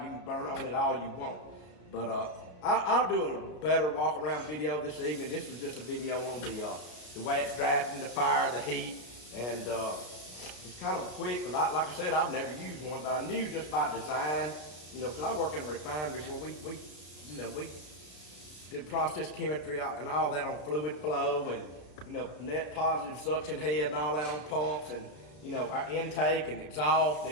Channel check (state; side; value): late; right; 33 ms